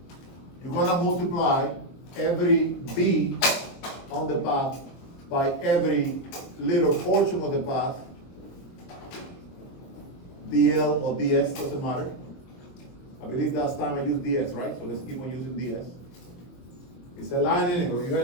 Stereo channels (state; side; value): late; right; 22 ms